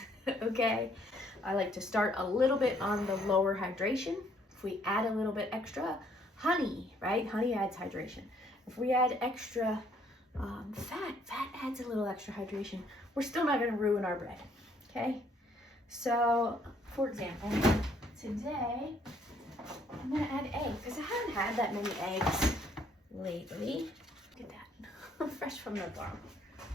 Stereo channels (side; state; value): both; normal; correlation 0.66